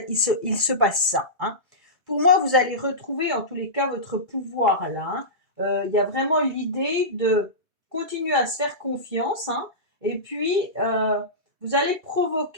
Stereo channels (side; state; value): left; late; 2.3 ms